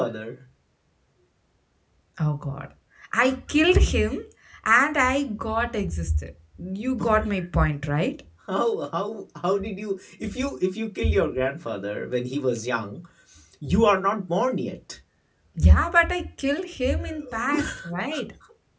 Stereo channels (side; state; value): both; identical; correlation 1.00